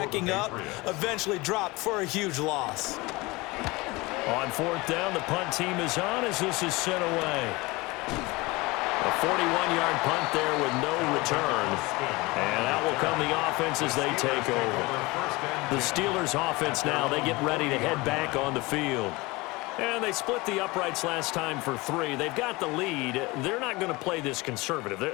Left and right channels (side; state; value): right; quieter; 23.0 dB